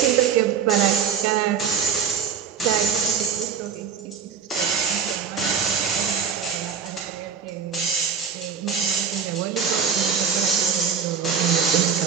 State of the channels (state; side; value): quieter; left; 7.1 dB